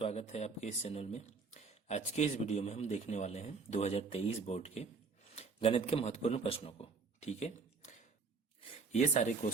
है आपके इस चैनल में। आज के इस वीडियो में हम देखने वाले हैं 2023 बोर्ड के गणित के महत्वपूर्ण प्रश्नों को। ठीक है, ये सारे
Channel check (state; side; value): quieter; left; 4.8 dB